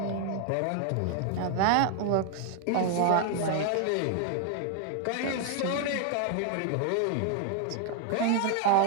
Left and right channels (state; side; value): different; both; correlation 0.00